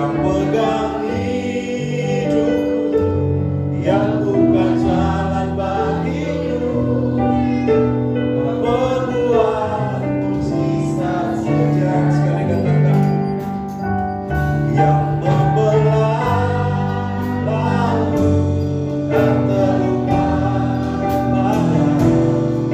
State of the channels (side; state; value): both; identical; correlation 1.00